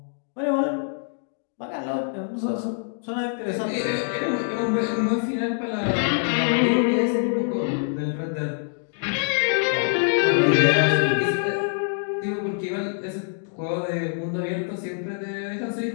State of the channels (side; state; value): right; silent; 58 dB below the other